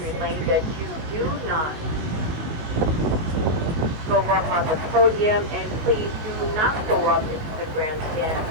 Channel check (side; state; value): left; late; 19 ms